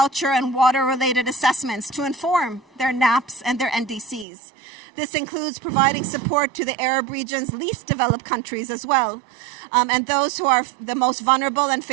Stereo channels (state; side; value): drops out; left; at 4.2 s